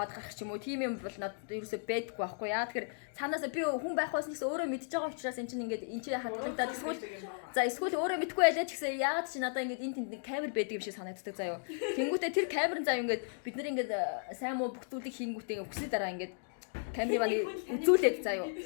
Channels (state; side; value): silent; right; digital silence